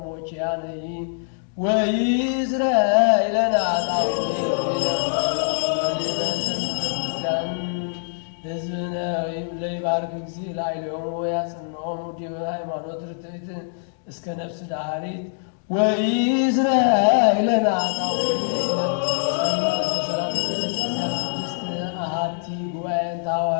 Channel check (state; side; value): silent; right; digital silence